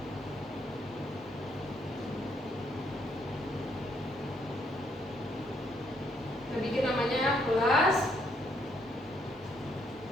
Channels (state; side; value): normal; both; correlation 0.71